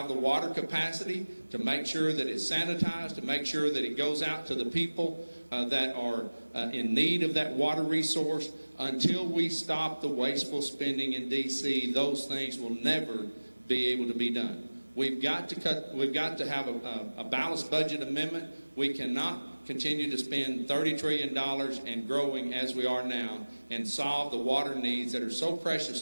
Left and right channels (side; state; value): both; inverted; correlation -1.00